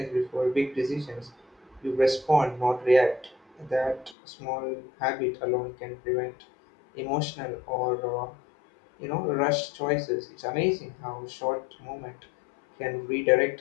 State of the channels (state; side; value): drops out; right; at 4.2 s